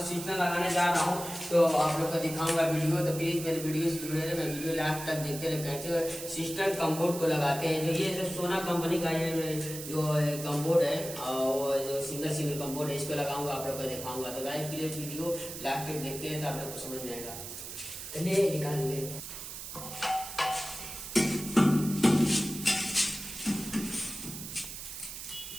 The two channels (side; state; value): right; noise; hiss, 9 dB below the sound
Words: सिस्टम लगाने जा रहा हूँ, तो आप लोग को दिखाऊंगा वीडियो। तो प्लीज मेरे वीडियो से जुड़े रहे, मैं वीडियो लास्ट तक देखते रहे कैसे सिस्टम कम्बोर्ड को लगाते हैं। जो ये जो सोना कंपनी का ये जो कम्बोर्ड है, वो जो सिंगल कम्बोर्ड है, इसको लगाऊंगा, आप लोग को दिखाऊंगा। तो गाइस प्लीज वीडियो लास्ट तक देखते हैं, तो आप लोग को समझ जाएगा। चलिए निकाल ले।